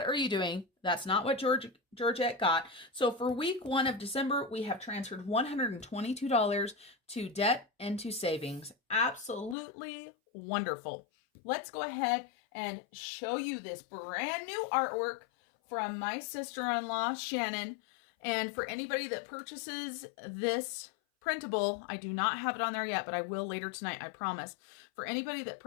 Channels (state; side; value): drops out; right; at 9.6 s